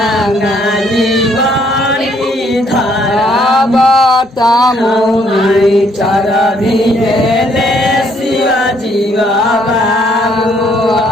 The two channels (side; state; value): both; normal; correlation 0.67